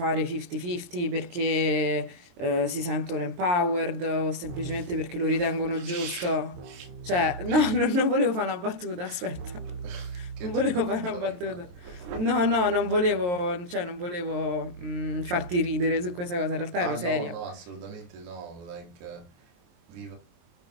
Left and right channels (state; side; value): late; left; 23 ms